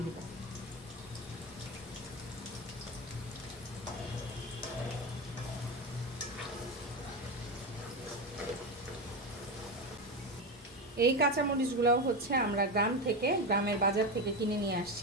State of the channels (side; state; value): both; normal; correlation 0.16